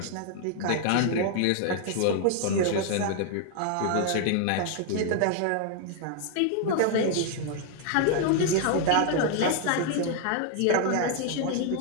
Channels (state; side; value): different; both; correlation 0.00